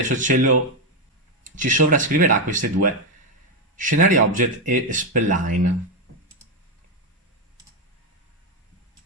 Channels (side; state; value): both; normal; correlation 0.05